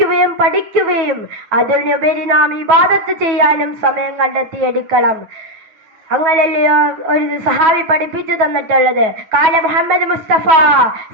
പഠിക്കുകയും അതിനുപരി നാം ഇബാദത്ത് ചെയ്യാനും സമയം കണ്ടെത്തിയെടുക്കണം. അങ്ങനല്ലയോ ഒരു സഹാബി പഠിപ്പിച്ചു തന്നിട്ടുള്ളത്. കാല മുഹമ്മദ് മുസ്തഫ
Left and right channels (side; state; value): left; late; 9.3 ms